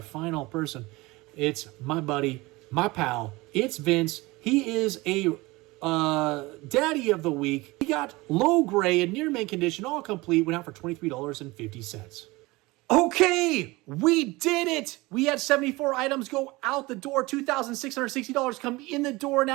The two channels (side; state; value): left; quieter; 22.0 dB